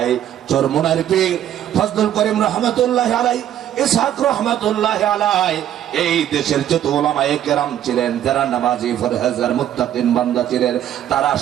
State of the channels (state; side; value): quieter; left; 11.2 dB